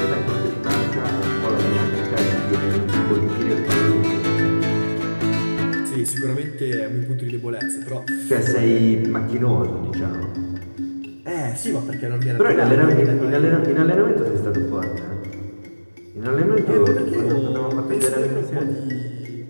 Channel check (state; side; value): inverted; both; correlation -1.00